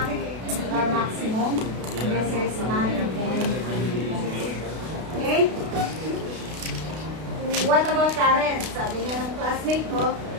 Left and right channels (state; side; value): late; left; 32 ms